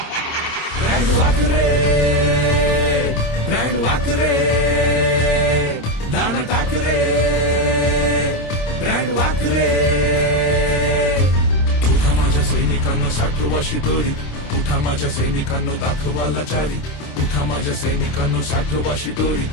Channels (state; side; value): late; right; 26 ms